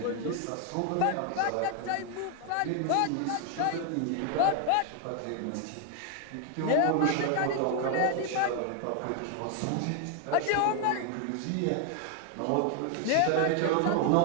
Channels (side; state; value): both; different; correlation 0.00